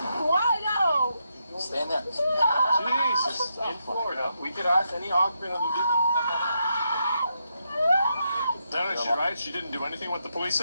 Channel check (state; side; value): inverted; both; correlation -0.81